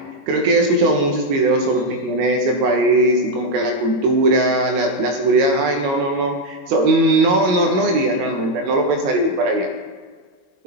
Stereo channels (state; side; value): late; left; 22 ms